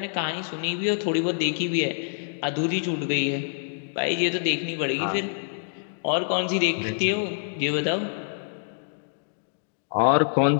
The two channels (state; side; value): silent; right; digital silence